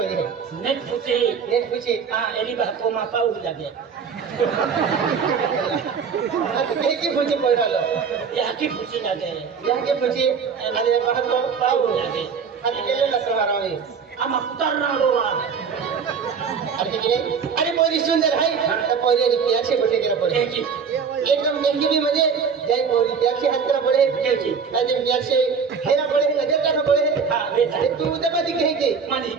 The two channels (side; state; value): left; quieter; 6.1 dB